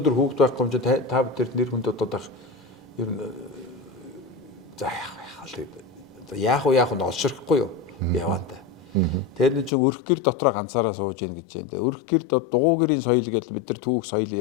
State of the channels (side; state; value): right; drops out; at 9.7 s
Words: хүүхд байхгүй юм чинь та бүхэн нэр хүнд бодоод байх ер нь за яах вэ олширхгүй юу яваанда. Тэр нэг чинь өрх гэр дотроо ганцаараа сууж ийн гэж байна. Өрх гэр дугуй гэрийн соёл гэдэг бид нар түүх соёл